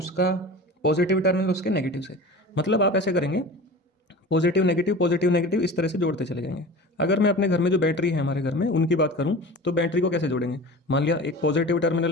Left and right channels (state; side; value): normal; both; correlation 0.36